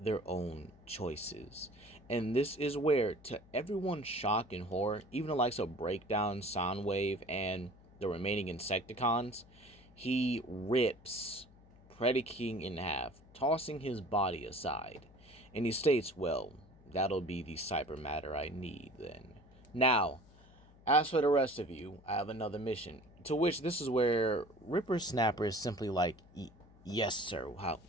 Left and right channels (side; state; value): left; noise; hum, 25 dB below the sound